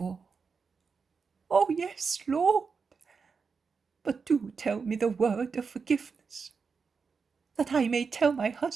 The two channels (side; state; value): left; quieter; 5.3 dB